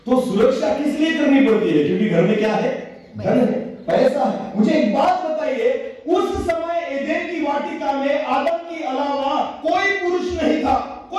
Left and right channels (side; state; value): both; identical; correlation 1.00